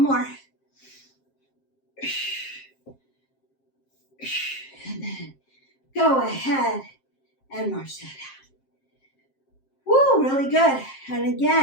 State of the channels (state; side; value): late; right; 7.5 ms